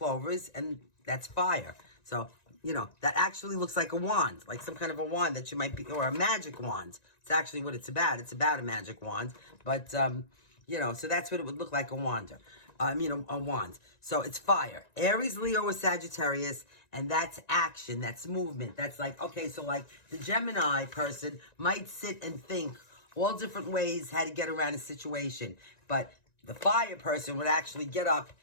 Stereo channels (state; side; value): late; right; 1.9 ms